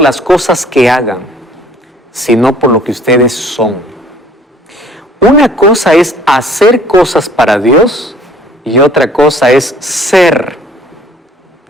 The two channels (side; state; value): both; normal; correlation 0.55